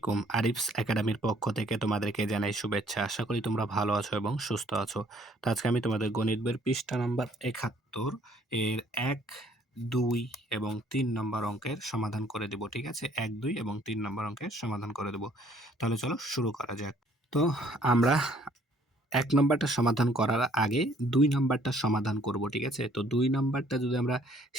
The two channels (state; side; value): normal; both; correlation 0.61